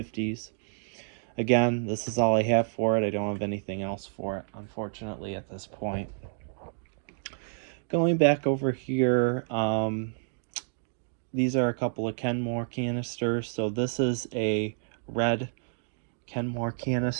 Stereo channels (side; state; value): left; silent; digital silence